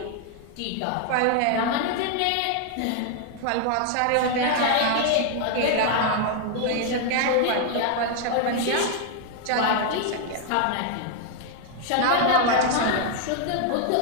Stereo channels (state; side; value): different; both; correlation 0.00